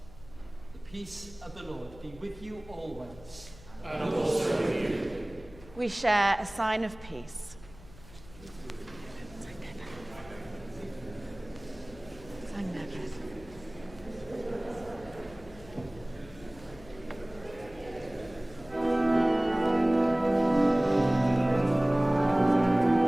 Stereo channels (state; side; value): noise; left; hum, 20 dB below the sound